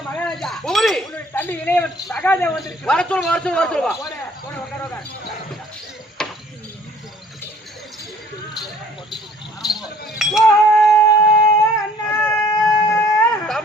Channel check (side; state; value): both; normal; correlation 0.55